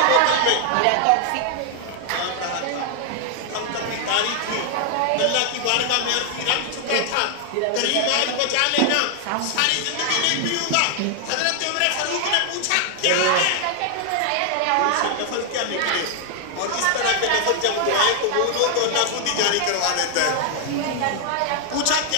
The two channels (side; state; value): both; different; correlation 0.00